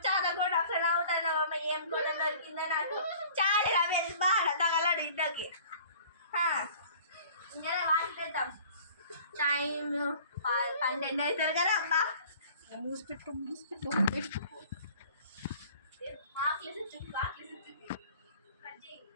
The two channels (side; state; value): both; inverted; correlation -0.49